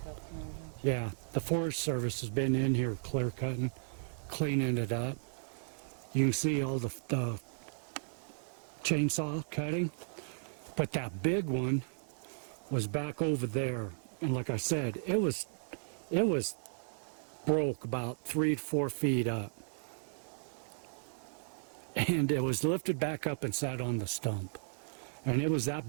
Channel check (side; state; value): left; silent; digital silence